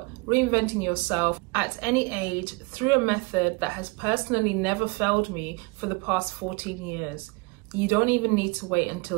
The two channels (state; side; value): quieter; left; 26.5 dB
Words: reinventing yourself at any age through a method that has personally never failed me for the past 14 years. You don't even need to wait